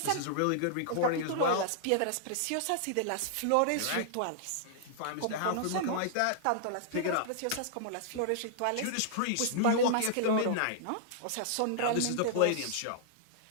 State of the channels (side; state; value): both; different; correlation -0.01